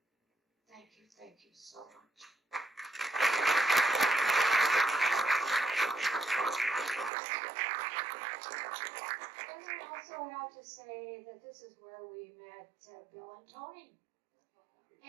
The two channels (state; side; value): drops out; left; at 7.1 s